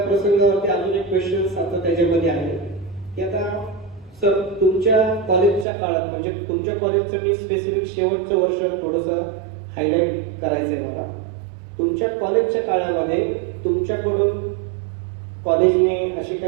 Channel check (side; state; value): left; drops out; at 5.7 s